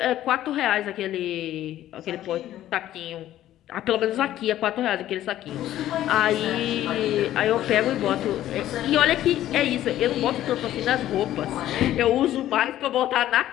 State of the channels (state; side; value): quieter; right; 13.1 dB